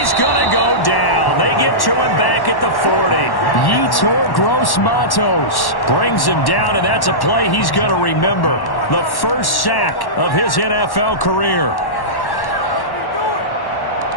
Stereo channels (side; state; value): right; late; 1.1 ms